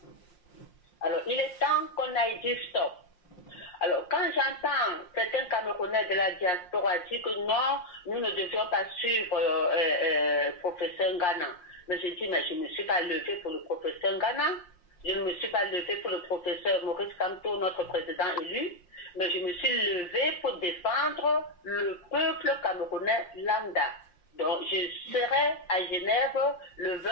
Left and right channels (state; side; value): late; right; 5.6 ms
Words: Alors, il est temps qu'on aille dire stop. Alors, quand j'entends certains Camerounais de la diaspora dire que non, nous ne devions pas suivre professeur Ngana. Mais je dis, mais je ne me suis pas levé pour le professeur Ngana. Je ne me suis pas levé pour le professeur Maurice Kamto, notre président élu. Mais je me suis levé pour défendre le peuple camerounais lambda. Donc, je serai à Genève le